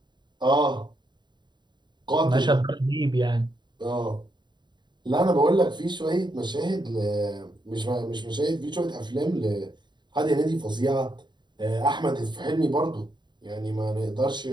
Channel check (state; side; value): late; left; 0.22 ms